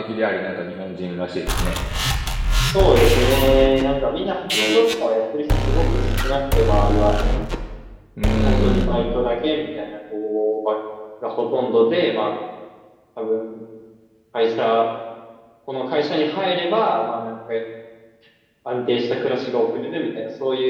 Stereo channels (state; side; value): identical; both; correlation 1.00